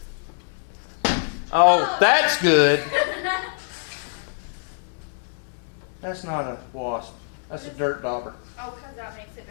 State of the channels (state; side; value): silent; right; 62 dB below the other